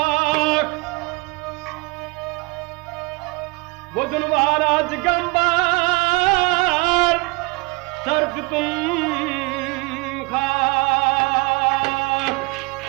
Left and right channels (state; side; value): quieter; left; 25.1 dB